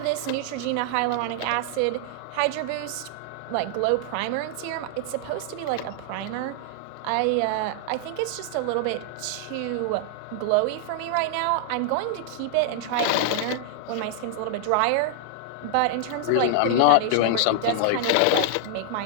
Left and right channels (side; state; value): both; different; correlation 0.00